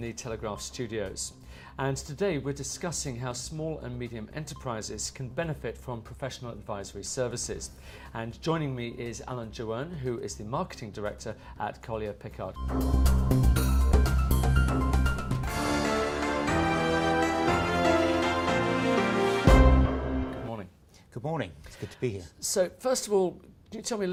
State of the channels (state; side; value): identical; both; correlation 1.00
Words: the Telegraph studios, and today we're discussing how small and medium enterprises can benefit from professional advisory services. And joining me is Alan Joanne, who is the Marketing Director at Collier Pickard. Good morning. Good morning, it's good to be here. So first of all, can you tell me a